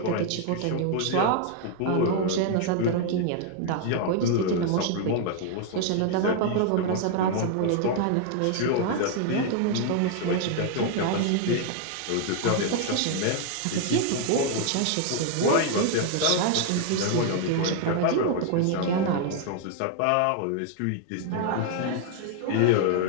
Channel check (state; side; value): different; both; correlation 0.00